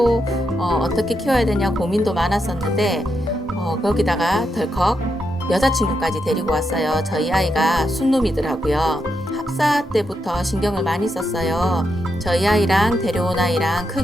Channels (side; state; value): both; normal; correlation 0.83